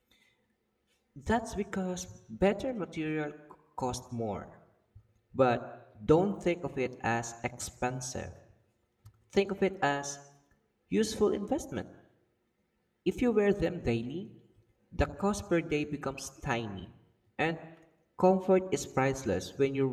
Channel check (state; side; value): identical; both; correlation 1.00